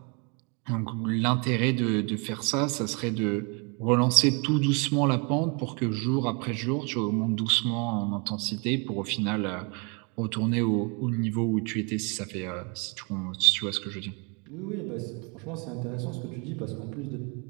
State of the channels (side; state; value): left; quieter; 33.3 dB